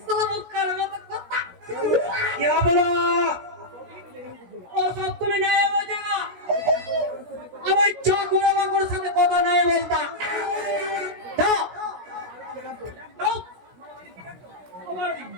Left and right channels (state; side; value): late; left; 16 ms